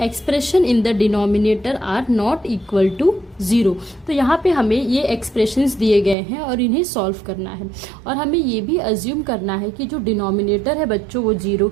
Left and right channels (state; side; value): drops out; left; at 6.2 s